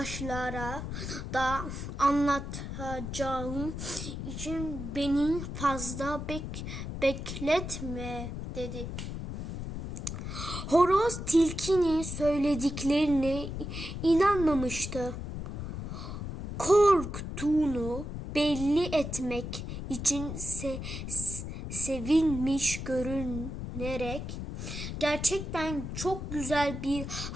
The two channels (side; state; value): left; noise; rumble, 6 dB below the sound